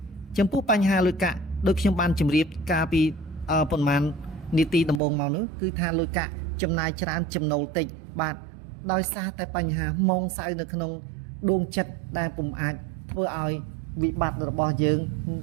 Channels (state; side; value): drops out; left; at 5.0 s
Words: ចំពោះបញ្ហាលុយកាក់ ដូចខ្ញុំបានជម្រាបការពីប៉ុន្មាននីតិដំបូងមកនោះគឺថាលុយកាក់ចំណាយច្រើនចំណូលតិចបាទដោយសារតែបញ្ហាម៉ងសៅនៅក្នុងដួងចិត្តដែលពុំអាចធ្វើឲ្យវិបត្តិរបស់យើង